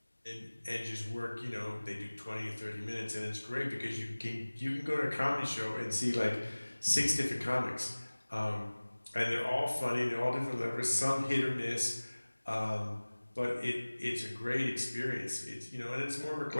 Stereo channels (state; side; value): inverted; both; correlation -1.00